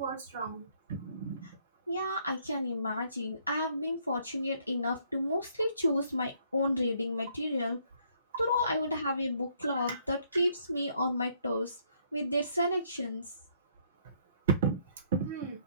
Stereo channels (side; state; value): both; inverted; correlation -0.67